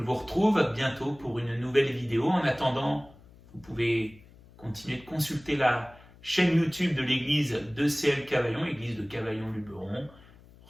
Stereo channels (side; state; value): left; noise; hum, 24 dB below the sound